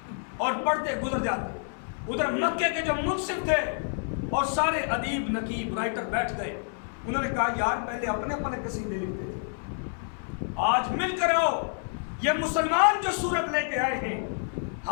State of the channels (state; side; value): silent; right; digital silence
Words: اور پڑھتے گزر جاتے۔ ادھر مکے کے جو منصف تھے اور سارے ادیب، نقیب، رائٹر بیٹھ گئے، انہوں نے کہا یار پہلے اپنے اپنے قصیدے لکھتے تھے، آج مل کر آؤ، یہ مسلمان جو سورت لے کے آئے ہیں